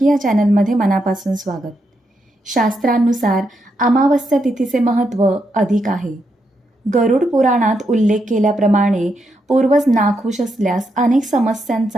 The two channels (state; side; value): normal; both; correlation 0.81